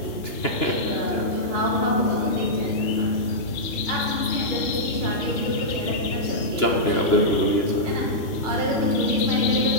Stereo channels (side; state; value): right; late; 3.6 ms